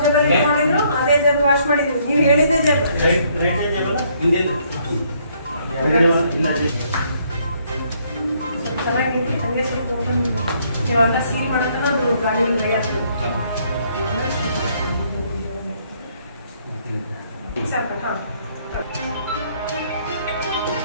ಜಾಗ ಮಾಡಿದ್ರು ಅದೇ ಜಾಗ ವಾಶ್ ಮಾಡಿದ್ರು. ನೀವು ಹೇಳಿದ್ದೆ ಜಾಗ ಚೆನ್ನಾಗಿದೆ. ಹಂಗೆ ಸ್ವಲ್ಪ ಓಪನ್ ಇವಾಗ ಸೀಲ್ ಮಾಡಕ್ಕೆ ಅದು ಗಾಳಿ ಡ್ರೈ ಆಗ್ತದೆ. ಸ್ವಲ್ಪ ಹಾಂ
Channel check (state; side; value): inverted; both; correlation -0.68